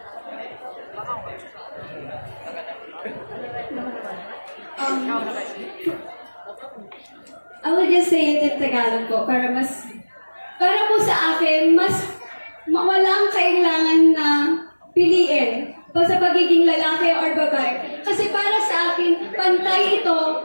I will just say it in Tagalog po para po sa akin walang kailangan na piliin pa sa pagiging lalaki or babae. Kasi para sa akin, pantay ito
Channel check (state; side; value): inverted; both; correlation -1.00